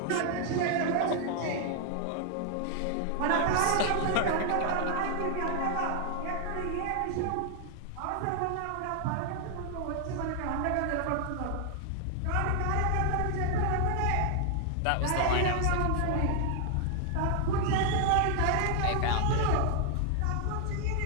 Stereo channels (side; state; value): both; different; correlation 0.00